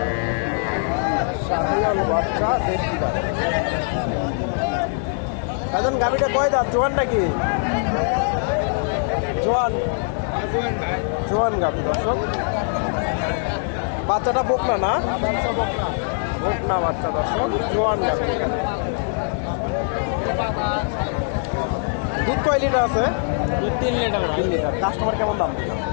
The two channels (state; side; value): silent; right; 64 dB below the other